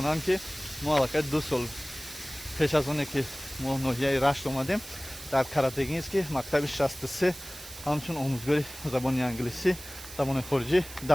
ки мо аллакай 2 сол пеш аз оне ки мо ноҳияи Рашт омадем дар Каратегинский мактаби 63 ҳамчун омӯзгори забони англисӣ, забони хориҷӣ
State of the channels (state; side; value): noise; right; hiss, 14 dB below the sound